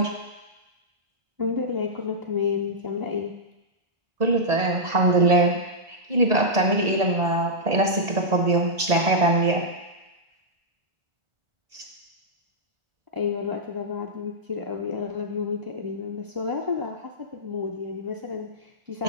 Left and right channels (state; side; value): late; left; 1.4 ms